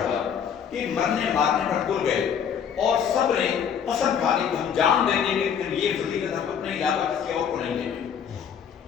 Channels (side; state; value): right; quieter; 7.8 dB